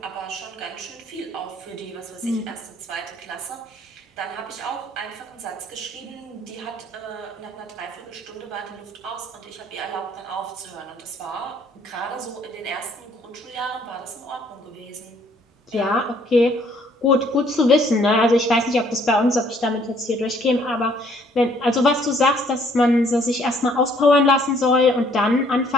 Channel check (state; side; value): normal; both; correlation 0.62